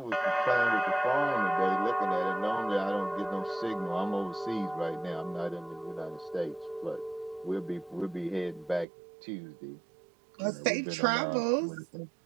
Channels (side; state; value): left; drops out; at 8.8 s